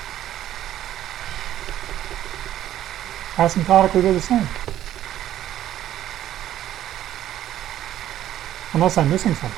Asymptotically, they're the same. Unless I'm missing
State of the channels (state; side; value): quieter; left; 12.3 dB